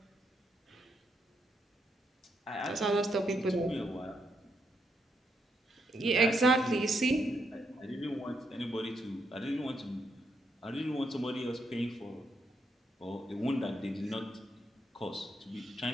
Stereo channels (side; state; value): both; normal; correlation 0.79